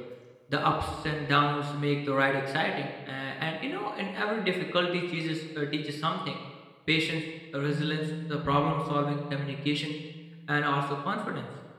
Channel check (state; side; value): identical; both; correlation 1.00